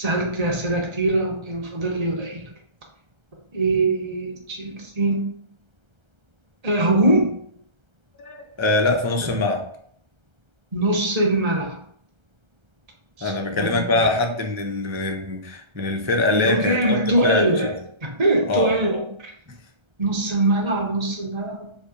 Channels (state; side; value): late; left; 1.3 ms